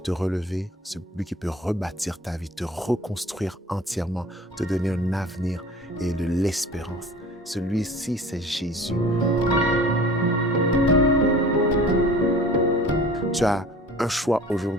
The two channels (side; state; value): both; normal; correlation 0.43